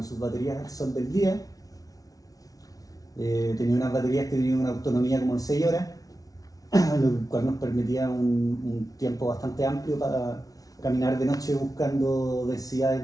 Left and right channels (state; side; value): late; right; 0.18 ms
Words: sus baterías al sol del día. Tenía unas baterías que tenían una autonomía como de 6 horas, lo cual nos permitía un tiempo bastante amplio para caminar de noche buscando densidades